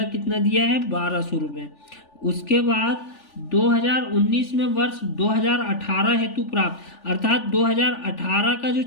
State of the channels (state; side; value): late; right; 3.4 ms